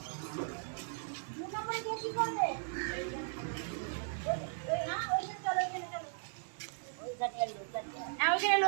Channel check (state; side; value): silent; left; 53 dB below the other